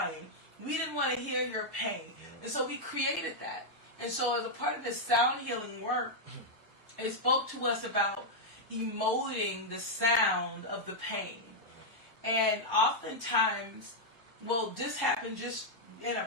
We didn't want to hear your pain. Yeah. And so we created that. And so as a part of this sound healing work, it spoke to us about emoting the sound of the pain. And oftentimes, this happened just in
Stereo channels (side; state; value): left; late; 1.0 ms